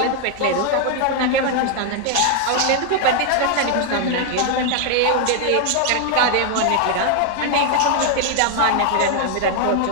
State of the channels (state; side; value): different; both; correlation 0.00